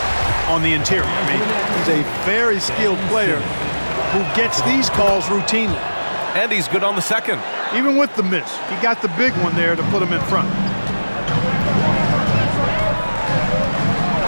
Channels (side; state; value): both; inverted; correlation -1.00